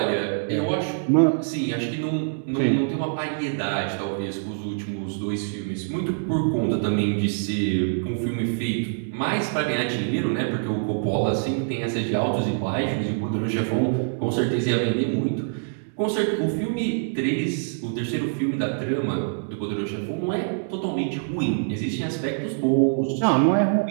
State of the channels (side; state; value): left; silent; digital silence